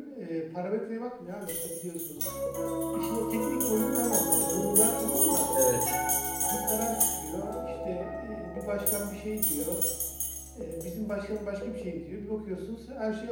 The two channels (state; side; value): identical; both; correlation 1.00